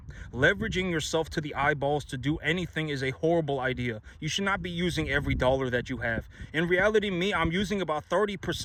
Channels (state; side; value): identical; both; correlation 1.00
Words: Leveraging yourself to the eyeballs to do anything is a horrible idea. You should not be using every dollar that you have. In reality, I'm using about